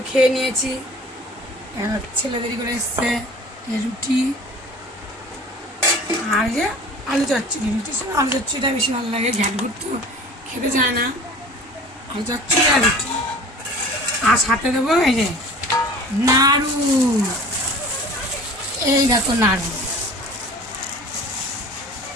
খেয়ে নিয়েছি, ছেলে দেরি করে এসছে। রুটি আর যে আলু চচ্চড়ি, রুটির সঙ্গে আলু চচ্চড়িটা বেশি ভালো লাগে। ঘ্যাটঘুট তো খেতে চায় না, আলু চচ্চড়ি আর রুটি। আর সাথে দেবো এই যে নাড়ু, এই দেখো নাড়ু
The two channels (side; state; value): both; normal; correlation 0.43